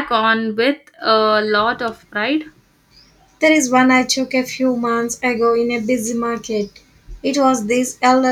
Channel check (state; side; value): identical; both; correlation 1.00